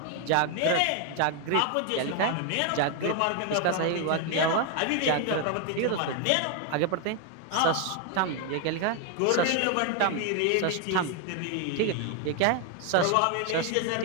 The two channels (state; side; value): different; both; correlation 0.01